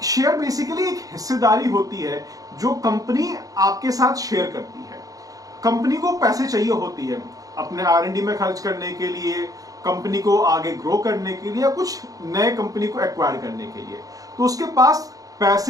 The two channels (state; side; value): late; left; 0.17 ms